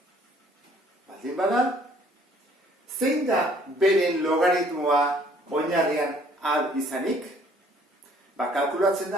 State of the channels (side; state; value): both; normal; correlation 0.59